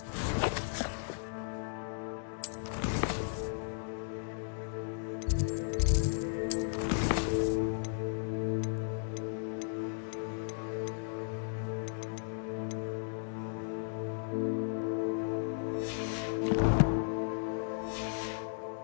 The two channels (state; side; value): silent; right; digital silence